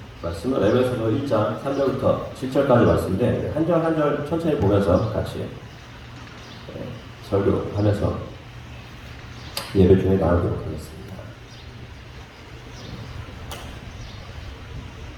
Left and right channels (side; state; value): both; identical; correlation 1.00